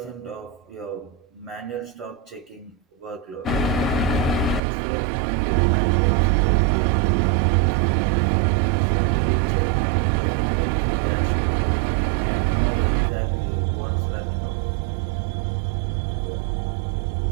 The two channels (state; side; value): drops out; left; at 4.6 s